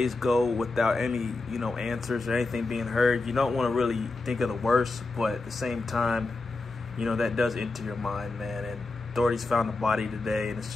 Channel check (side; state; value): right; quieter; 3.4 dB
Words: go without any, answers or anything being heard, you don't want to really think of the worst, but at the same time, that does enter your mind, man. And authorities found the body today, and it's